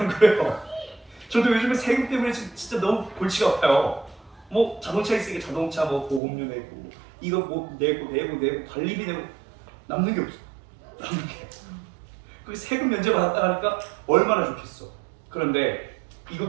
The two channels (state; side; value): drops out; left; at 6.2 s